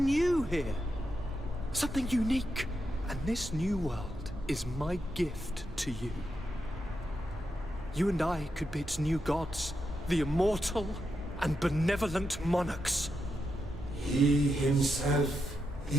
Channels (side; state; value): both; normal; correlation 0.85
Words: new here. Something unique. And this new world is my gift to you. You and I could be its new gods, the immortal and benevolent monarchs. He himself